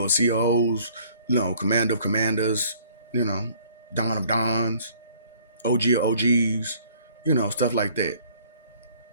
of COs, Commander of Commanders, Don of Dons, OG of OGs, stuff like that.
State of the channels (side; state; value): both; inverted; correlation -0.58